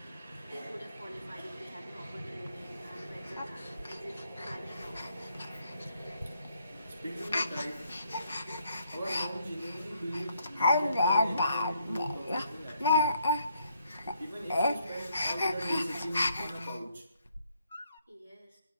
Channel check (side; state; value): both; inverted; correlation -0.72